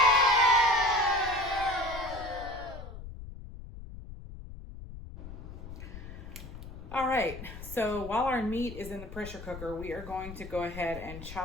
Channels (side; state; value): left; noise; rumble, 12 dB below the sound